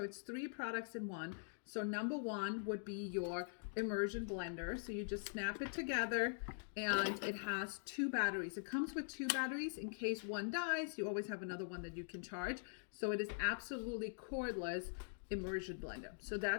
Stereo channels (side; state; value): right; silent; digital silence